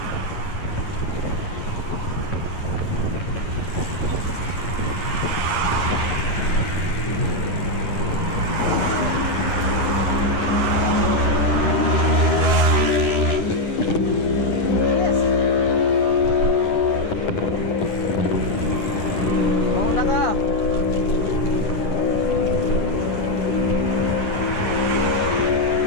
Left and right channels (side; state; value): right; late; 10 ms